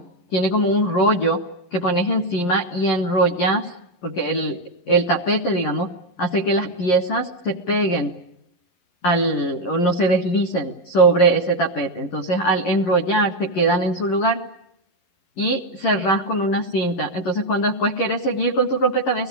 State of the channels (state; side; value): late; right; 11 ms